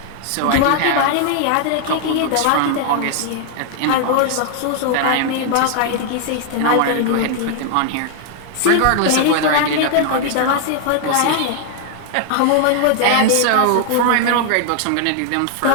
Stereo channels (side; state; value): both; different; correlation 0.00